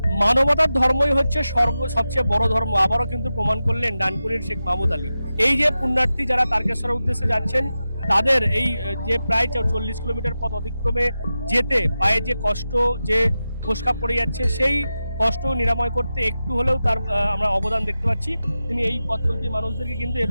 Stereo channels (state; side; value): inverted; both; correlation -0.93